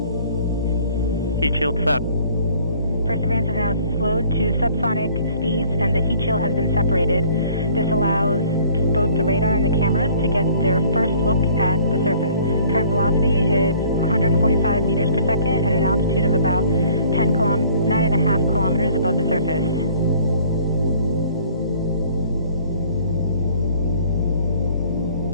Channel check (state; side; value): inverted; both; correlation -0.55